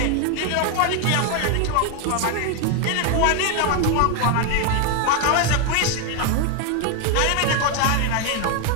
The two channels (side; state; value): both; different; correlation 0.01